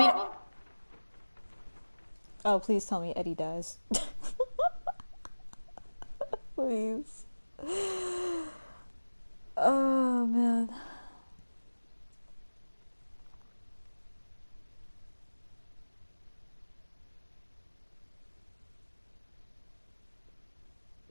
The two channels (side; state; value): both; inverted; correlation -1.00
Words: Oh, please tell me Eddie dies. Please. Oh, man.